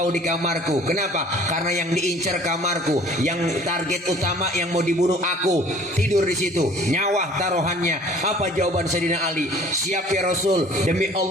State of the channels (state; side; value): normal; both; correlation 0.51